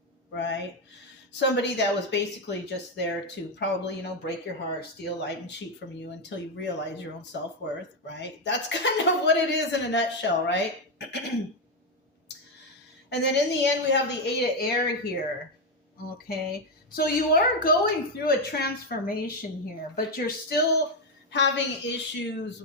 right? Somebody that was basically just there to probably, break your heart, steal, light, and cheat from you until you realize your own self-worth, right? That's kind of what it is in a nutshell, right? And then in the end, we have the 8 of air here. Okay. So you are going through a transformation here, but you're still having issues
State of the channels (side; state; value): both; normal; correlation 0.07